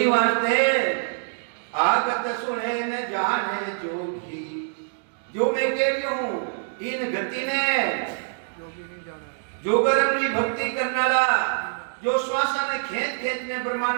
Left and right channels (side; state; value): left; silent; digital silence